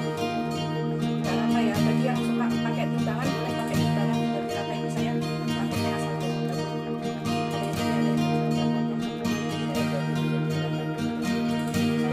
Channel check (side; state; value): both; identical; correlation 1.00